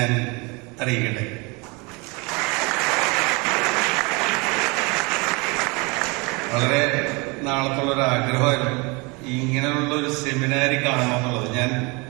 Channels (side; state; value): left; quieter; 28.1 dB